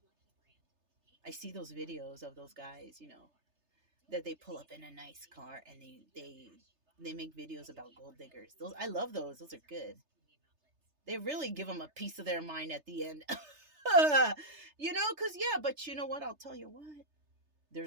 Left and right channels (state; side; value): late; left; 3.3 ms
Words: I see those videos of those guys, that they pull up in a nice car and they make videos about gold diggers. I love those. Those are good. They really give them a piece of their mind at the end. Because, yeah, but you know what? I'll tell you what.